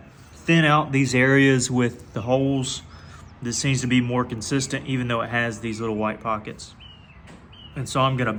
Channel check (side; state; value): both; identical; correlation 1.00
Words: thin out these areas with the holes. This seems to be more consistent, even though it has these little white pockets. And so I'm gonna